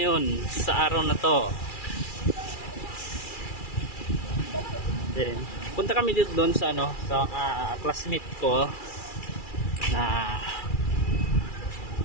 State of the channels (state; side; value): late; right; 2.4 ms